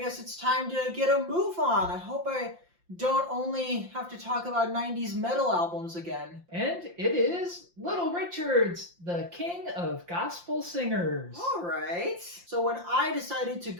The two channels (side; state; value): left; late; 5.7 ms